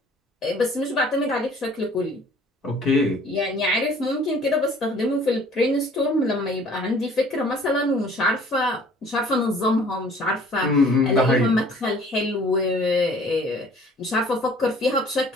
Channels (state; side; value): normal; both; correlation 0.53